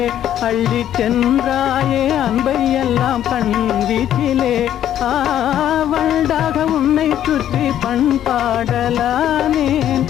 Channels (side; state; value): right; quieter; 11.1 dB